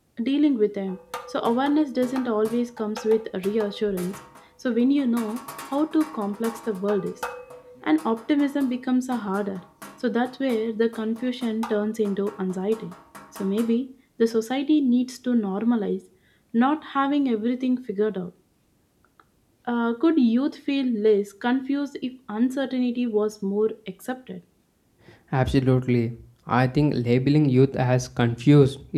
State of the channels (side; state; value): both; identical; correlation 1.00